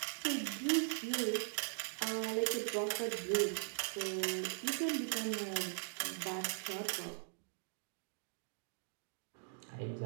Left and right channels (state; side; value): silent; left; digital silence